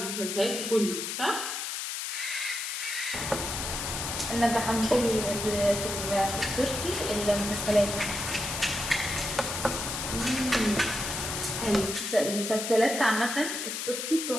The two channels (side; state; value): left; noise; hiss, 4 dB below the sound